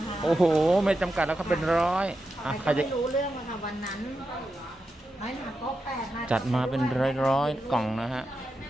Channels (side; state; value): both; normal; correlation 0.88